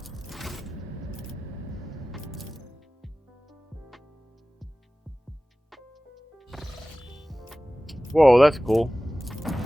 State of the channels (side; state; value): both; normal; correlation 0.97